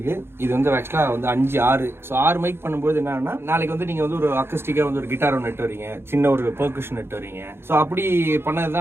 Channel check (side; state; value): left; late; 0.11 ms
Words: இது வந்து ஆக்சுவலாக வந்து 5 6. ஸோ 6 மைக் பண்ணும்போது என்னன்னா, நாளைக்கு வந்து நீங்கள் வந்து ஒரு அக்கஸ்டிக்காக வந்து ஒரு கிட்டார் ஒன்று நெட்டு வரீங்க, சின்ன ஒரு பெர்கஷன் நெட்டு வரீங்க. ஸோ அப்படி பண்ணது